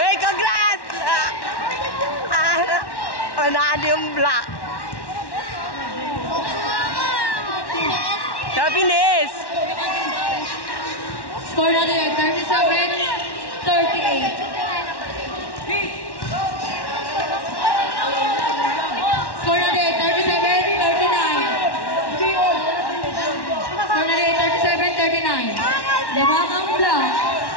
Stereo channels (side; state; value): right; late; 1.1 ms